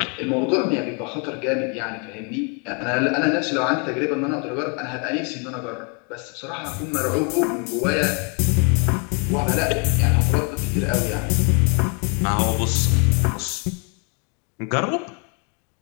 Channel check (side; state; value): right; quieter; 35.6 dB